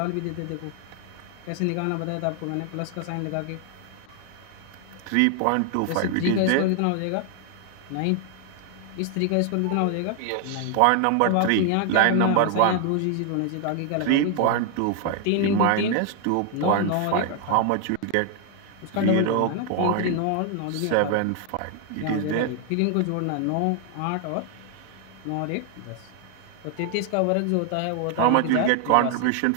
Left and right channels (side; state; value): both; different; correlation 0.00